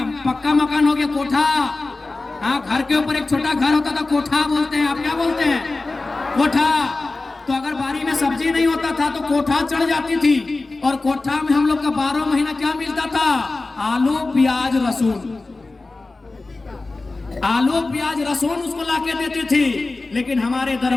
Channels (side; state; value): right; quieter; 3.4 dB